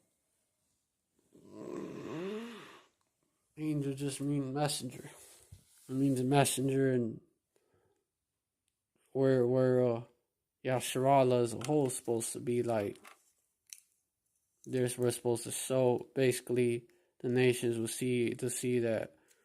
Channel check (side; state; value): both; identical; correlation 1.00